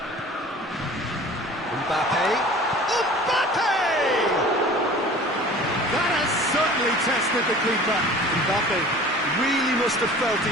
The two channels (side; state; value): both; normal; correlation 0.44